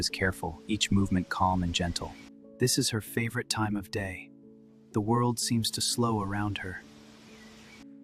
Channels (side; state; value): both; identical; correlation 1.00